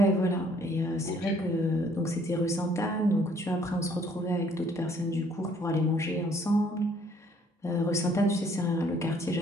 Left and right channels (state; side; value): normal; both; correlation 0.61